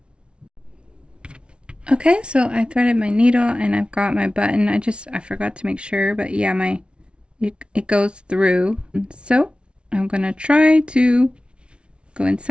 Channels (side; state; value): left; late; 0.058 ms